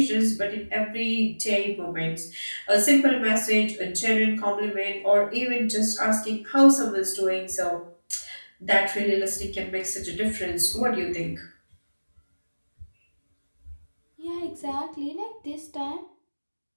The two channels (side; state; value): both; inverted; correlation -1.00